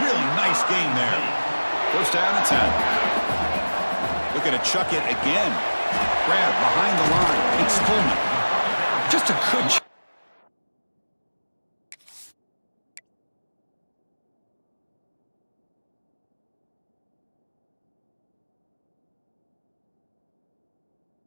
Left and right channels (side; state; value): both; inverted; correlation -1.00